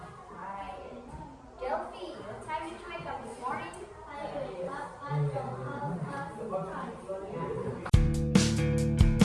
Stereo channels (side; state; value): both; identical; correlation 1.00